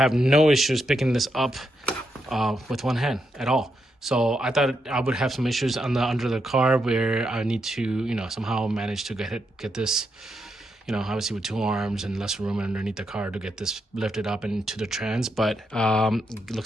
no issues picking this up with one hand at all. So I thought I would have some issues under the car where I need to, somehow manage to get this, you know, obviously with 2 arms and less room underneath the car to get this lifted up into the trans, but it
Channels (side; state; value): both; normal; correlation 0.82